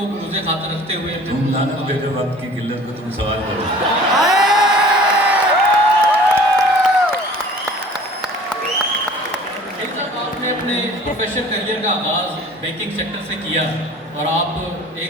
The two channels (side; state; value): both; normal; correlation 0.46